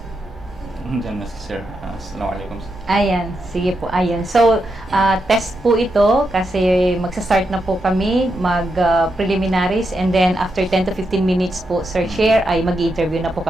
Diyan na si Sir. Assalamualaikum. Ayan, sige po, ayan. So, test po ito kasi magsa-start na po kami mag-preliminaries and then after 10 to 15 minutes po, Sir Chair, ay mag-interview na po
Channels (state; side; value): normal; both; correlation 0.84